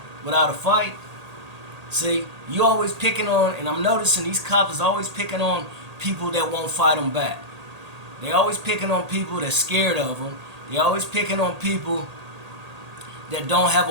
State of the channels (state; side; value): late; left; 1.8 ms